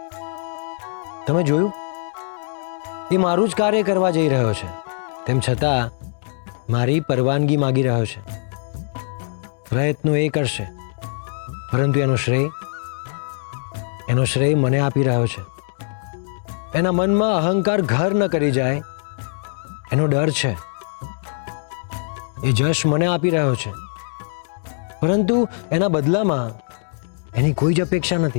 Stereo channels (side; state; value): right; silent; 64 dB below the other